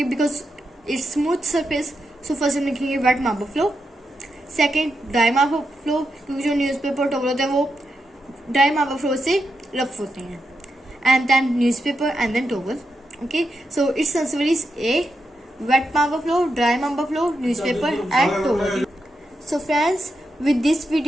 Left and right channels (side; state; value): both; normal; correlation 0.85